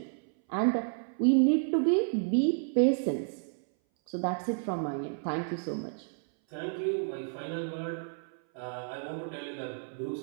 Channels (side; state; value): left; silent; 57 dB below the other